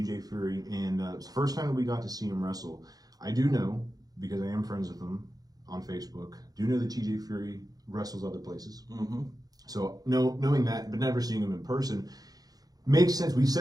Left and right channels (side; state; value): left; late; 0.18 ms